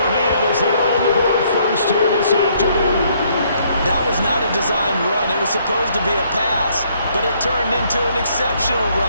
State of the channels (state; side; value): inverted; both; correlation -0.67